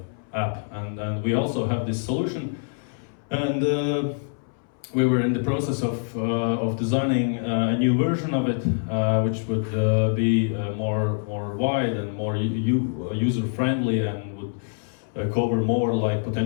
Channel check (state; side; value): silent; right; 62 dB below the other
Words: app. And we also have this solution, and we were in the process of designing a new version of it, which would be more wide and more user friendly, and would cover more like